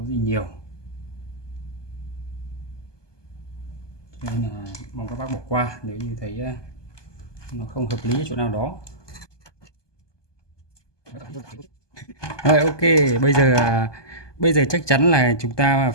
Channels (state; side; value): late; right; 1.2 ms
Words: nhiều, cho nên là mong các bác bỏ qua nếu như thấy nó không hợp lý ở chỗ nào đó. Rồi, ok, bây giờ chắc chắn là chúng ta